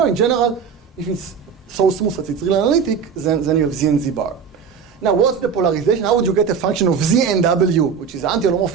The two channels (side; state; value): left; quieter; 6.5 dB